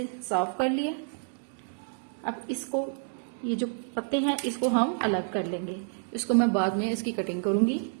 साफ कर लिया। अब इसको, ये जो पत्ते हैं इसको हम अलग कर लेंगे। इसको मैं बाद में इसकी कटिंग करूंगी।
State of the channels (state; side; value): silent; left; 59 dB below the other